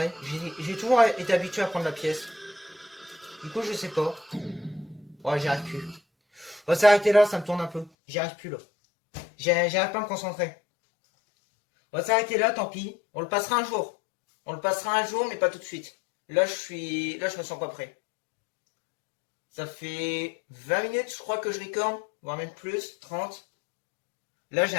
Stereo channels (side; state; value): right; drops out; at 7.9 s